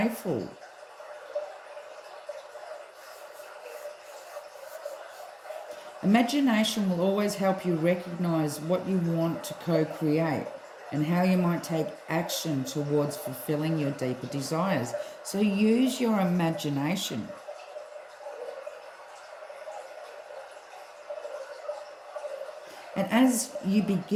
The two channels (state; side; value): identical; both; correlation 1.00